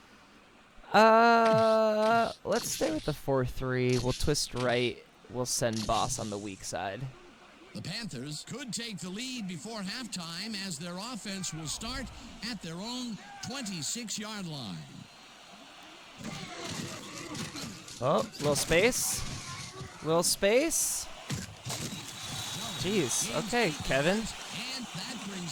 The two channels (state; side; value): identical; both; correlation 1.00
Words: Let's stay with the 4-3. We'll twist right. We'll send Boss on the weak side. The Panthers could take the lead before halftime as their offense will start at their own 26-yard line. Oh, little space. Little space. Jeez. Okay, Kevin. And that